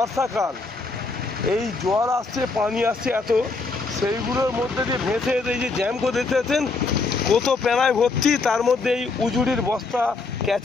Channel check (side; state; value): right; quieter; 3.9 dB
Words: এই জল আসছে, পানি আসছে এত, সেইগুলোর মধ্যে দিয়ে ভেসে এই যে জ্যাম করে দেখতে পাচ্ছেন কত প্যানায় ভর্তি, তার মধ্যে এই উজুড়ির বস্তা,